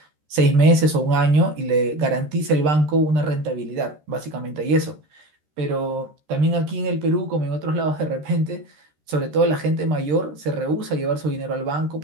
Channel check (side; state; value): left; late; 13 ms